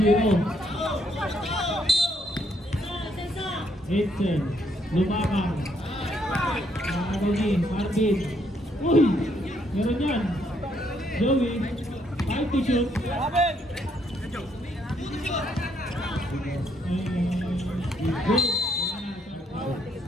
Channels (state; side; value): normal; both; correlation 0.72